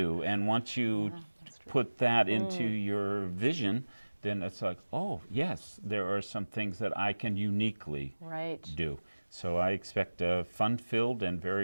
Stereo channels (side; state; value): both; inverted; correlation -1.00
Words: and once you That's true. put that into your vision, then it's like, oh yes, there are some things that I can uniquely Right. do. So I expect a fun-filled and